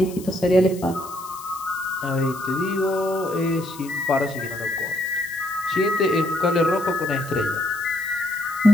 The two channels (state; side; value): noise; left; hiss, 17 dB below the sound